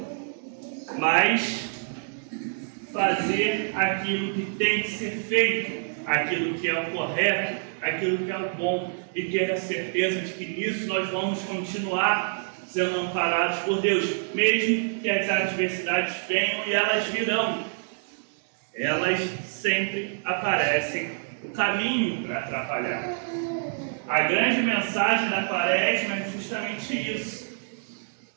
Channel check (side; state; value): left; silent; digital silence